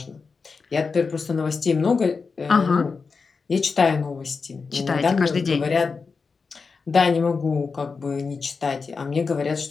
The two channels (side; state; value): right; quieter; 4.8 dB